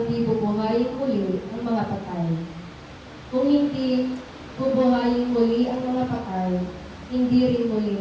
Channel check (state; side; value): identical; both; correlation 1.00